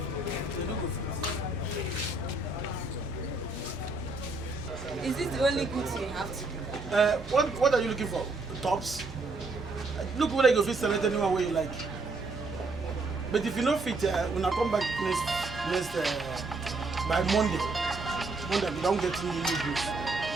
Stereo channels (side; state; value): left; quieter; 3.3 dB